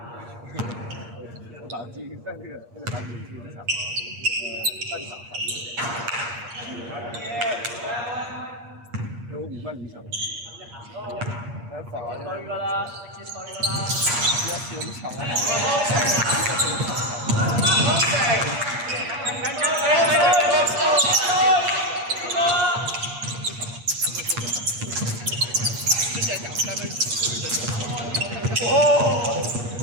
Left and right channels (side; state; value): left; late; 8.5 ms